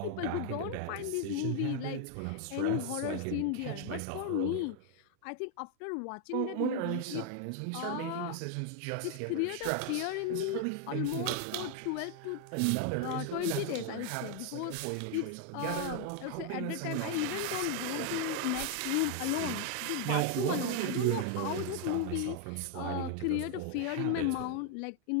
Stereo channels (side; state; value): both; different; correlation 0.00